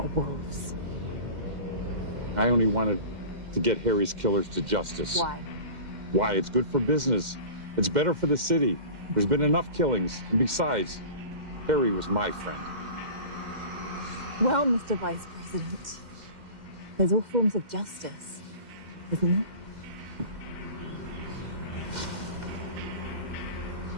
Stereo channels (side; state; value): left; late; 2.1 ms